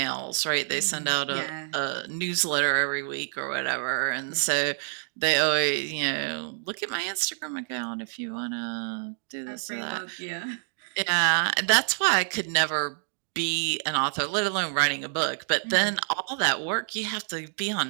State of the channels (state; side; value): silent; left; digital silence